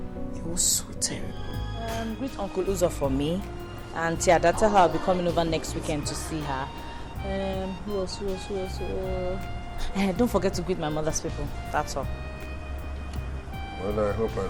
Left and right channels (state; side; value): identical; both; correlation 1.00